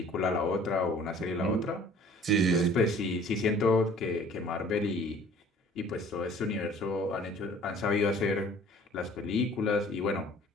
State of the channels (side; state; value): both; normal; correlation 0.51